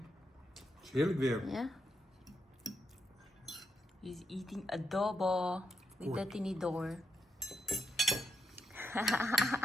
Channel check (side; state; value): both; normal; correlation 0.80